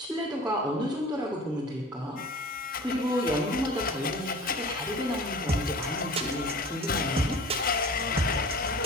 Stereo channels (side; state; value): both; normal; correlation 0.41